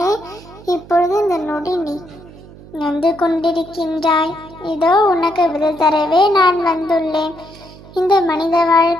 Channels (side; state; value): right; noise; hum, 20 dB below the sound